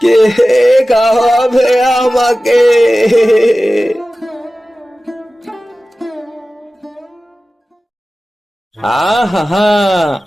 কে খাওয়াবে আমাকে? আহা,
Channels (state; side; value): normal; both; correlation 0.96